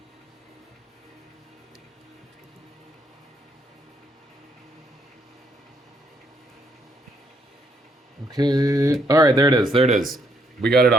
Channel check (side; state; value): both; normal; correlation 0.72